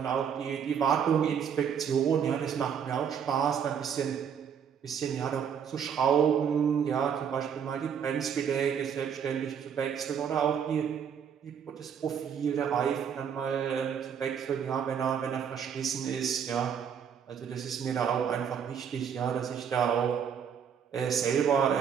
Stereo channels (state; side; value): quieter; left; 7.7 dB